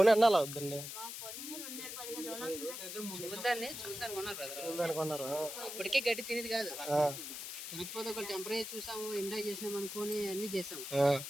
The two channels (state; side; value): noise; left; hiss, 7 dB below the sound